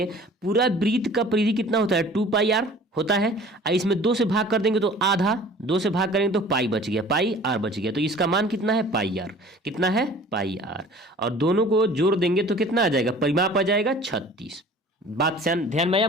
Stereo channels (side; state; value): both; normal; correlation 0.47